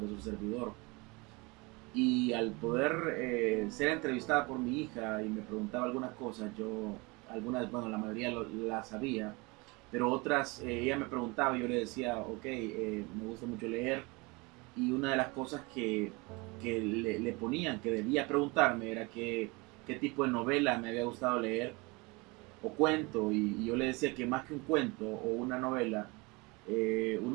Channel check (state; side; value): quieter; left; 26.3 dB